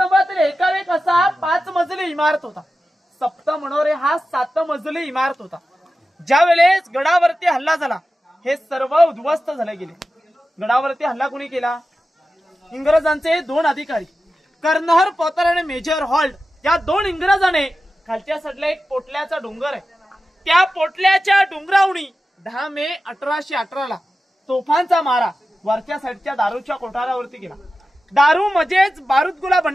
एकावेक असा 5 मजली इमारत होता. सप्त मनोरे हा 7 मजली इमारत होता. ज्या वेळेस गडावरती हल्ला झाला हे सर्व उद्ध्वस्त झाले गेले. गडावरती हल्ला कोणी केला? इंग्रजांचे 2 अधिकारी कर्नल पॉटर आणि मेजर हॉल्ट या 2 इंग्रजाने खालच्या साईडला एक पोटल्याचा डोंगर आहे, त्या पोटल्याच्या डोंगरावणी 10 मे 1818 ला तोफांचा मारा वरच्या साईडच्या दारूच्या कोठारावरती केला. दारू म्हणजेच बारूदगोळा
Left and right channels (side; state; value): both; normal; correlation 0.93